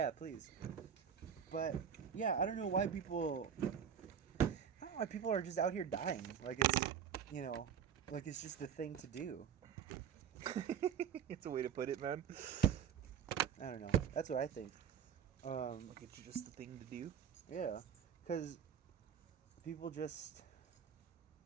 please. But yeah, I don't know why people. I don't know why people are just out here dying. Like it's, like it's just the thing to do. It's a way to put it, man. I don't know. That's what I think. Like it's just the thing to do. Yeah, because people just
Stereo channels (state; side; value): quieter; left; 8.1 dB